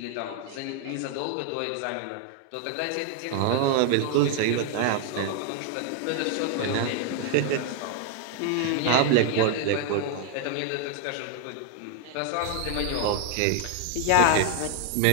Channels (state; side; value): different; both; correlation 0.00